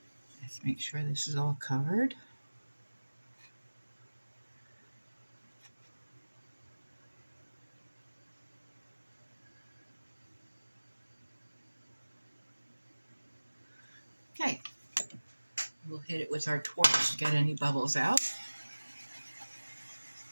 let's make sure this is all covered. Okay, we'll hit it with our torch to get any bubbles out.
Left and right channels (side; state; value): both; inverted; correlation -1.00